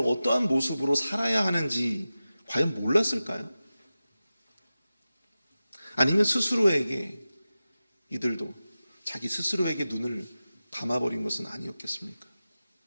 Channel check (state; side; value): inverted; both; correlation -0.95